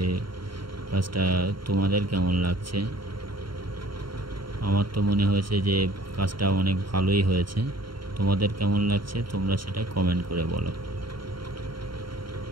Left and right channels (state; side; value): late; left; 0.73 ms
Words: কাজটা তোমাদের কেমন লাগছে। আমার তো মনে হয়েছে যে কাজটা অনেক ভালোই হয়েছে। তোমাদের কেমন লাগছে তোমরা সেটা কমেন্ট করে বলো।